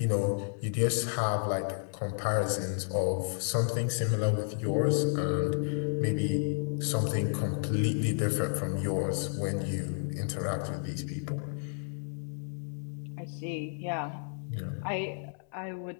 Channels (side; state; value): right; silent; 57 dB below the other